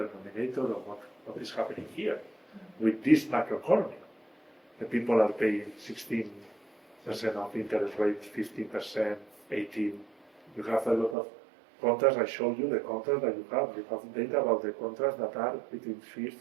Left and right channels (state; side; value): drops out; left; at 11.2 s